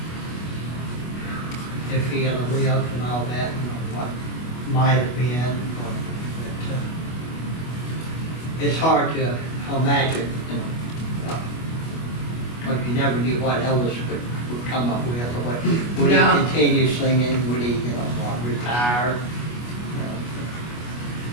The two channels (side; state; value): right; late; 25 ms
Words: if he had lived and all that, you know, what might have been. But, it's hard to imagine, you know, because you never knew what Elvis would come up with, or what, would he continue singing, would he, you know, retire?